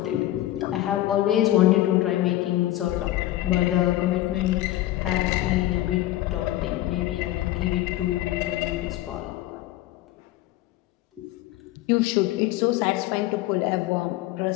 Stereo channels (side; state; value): right; quieter; 15.2 dB